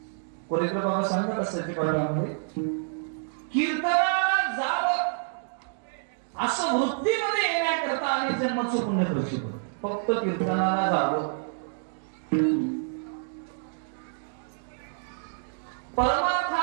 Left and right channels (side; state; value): left; silent; digital silence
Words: कोरेकर बाबा सांगतात असते प्रमाणामध्ये, कीर्तनाला जावं असं वृत्तीमध्ये येण्याकरता आणि जन्माचं पुण्य प्रसिद्ध. फक्त कीर्तनाला जावं,